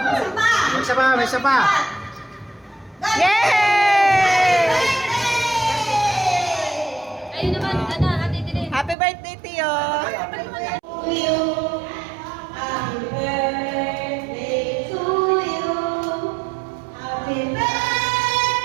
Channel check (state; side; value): drops out; left; at 9.0 s